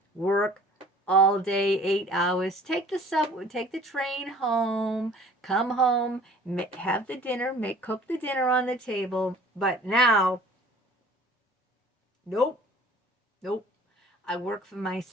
work all day, 8 hours, take the subway, take the train home, come home, have the dinner, cook the dinner on the table. But now, nope. I work for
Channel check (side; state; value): both; normal; correlation 0.50